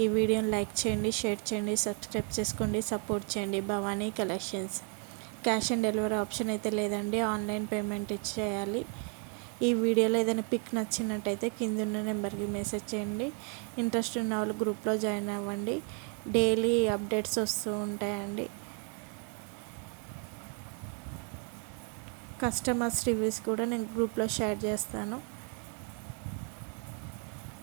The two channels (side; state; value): left; quieter; 38.1 dB